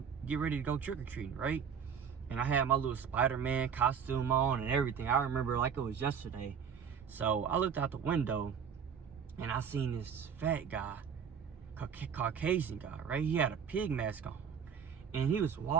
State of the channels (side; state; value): left; quieter; 7.2 dB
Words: get ready to go trick or treating, right? And I had my little Spider-Man costume on and everything. I remember like it was yesterday. So I looked out the window, and I seen this fat guy, Caucasian guy, right? He had a pig mask on, and he was